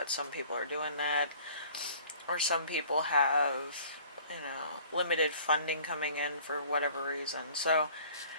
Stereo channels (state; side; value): inverted; both; correlation -0.51